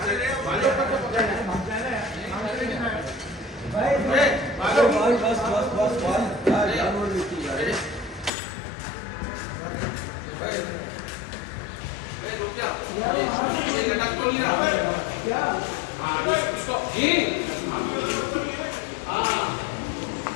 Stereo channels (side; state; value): right; drops out; at 8.3 s